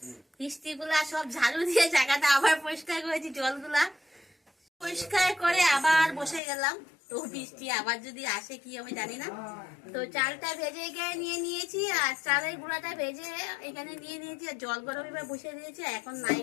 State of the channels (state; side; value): drops out; right; at 6.4 s